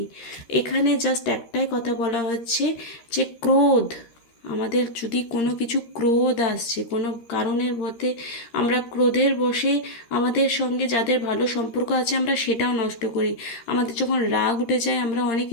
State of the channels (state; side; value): late; right; 13 ms